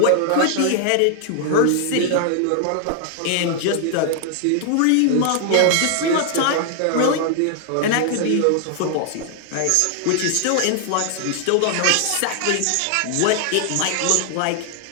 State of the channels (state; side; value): different; both; correlation 0.00